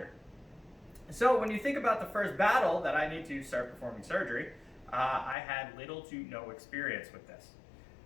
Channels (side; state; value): right; drops out; at 5.4 s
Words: So when you think about the first battle that I need to start performing surgery, I had little to no experience with this.